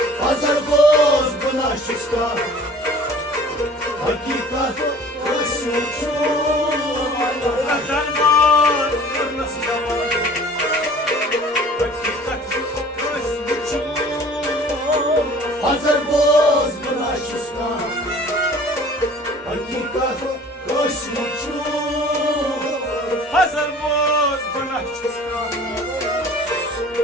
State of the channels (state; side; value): normal; both; correlation 0.48